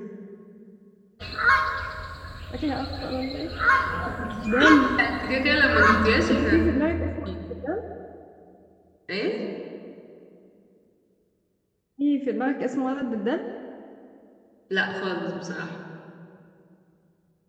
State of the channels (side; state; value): both; identical; correlation 1.00